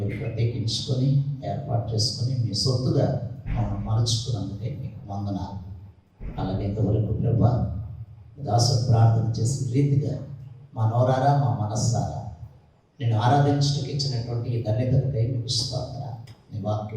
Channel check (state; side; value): identical; both; correlation 1.00